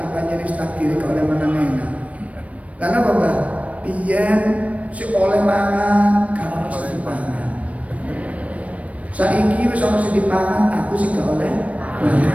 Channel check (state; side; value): late; left; 0.066 ms